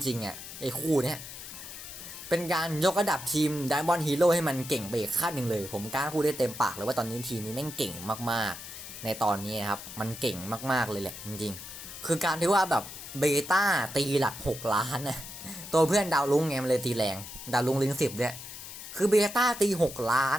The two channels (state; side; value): noise; left; hiss, 12 dB below the sound